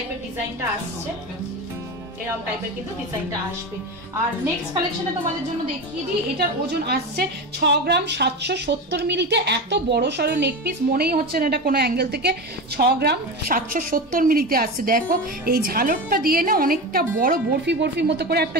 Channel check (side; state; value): both; normal; correlation 0.24